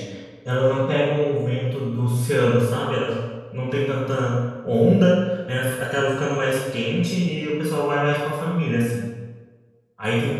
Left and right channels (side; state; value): both; identical; correlation 1.00